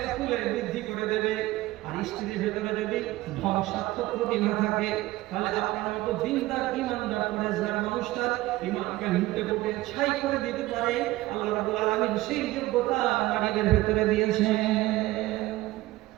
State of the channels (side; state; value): left; quieter; 17.9 dB